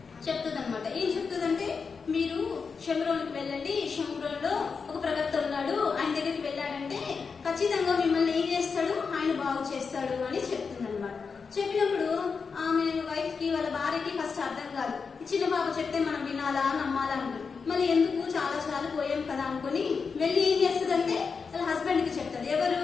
చెప్తుంది అనమాట. ఏం చెప్తుందంటే, మీరు షమ్రోన్కి వెళ్ళండి, షమ్రోన్లో ఒక ప్రవక్త ఉన్నాడు, ఆయన దగ్గరికి వెళ్ళాడంటే ఖచ్చితంగా మిమ్మల్ని ఏం చేస్తాడు, ఆయన బాగు చేస్తాడు అని చెప్తుంది అనమాట. చెప్పినప్పుడు ఆమె వైఫ్ కి వాళ్ళ భార్యకి ఫస్ట్ అర్థం కాదు. ఈ చిన్న పాప చెప్తే మనం వినాలా నమ్మాలా అనుకుంది. మళ్ళీ ఎందుకు చాలా పోయాం కదా అనుకుని వెళ్ళి ఏం చేస్తుందంటే వాళ్ళ హస్బెండ్ కి చెప్తుంది. ఎవరు?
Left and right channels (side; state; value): right; quieter; 5.3 dB